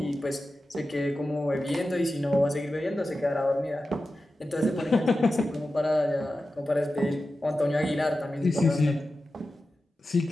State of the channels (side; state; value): both; normal; correlation 0.93